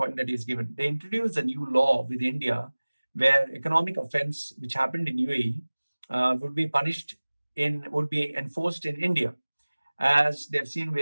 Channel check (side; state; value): both; inverted; correlation -1.00